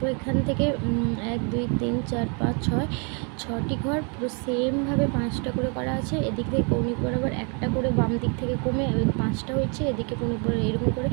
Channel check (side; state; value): left; quieter; 36.0 dB